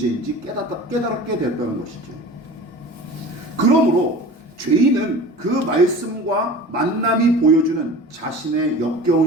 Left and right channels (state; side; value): normal; both; correlation 0.38